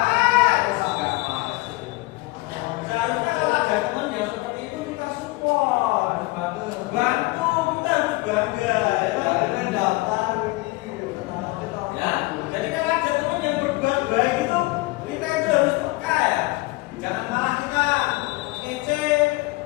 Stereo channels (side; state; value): right; quieter; 22.0 dB